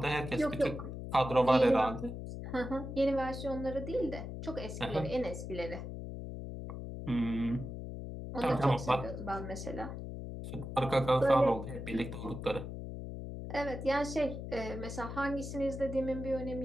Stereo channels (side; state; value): left; noise; hum, 7 dB below the sound